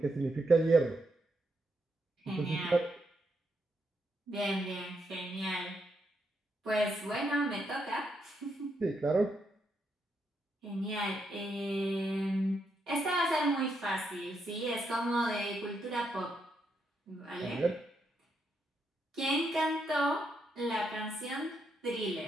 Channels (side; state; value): both; normal; correlation 0.79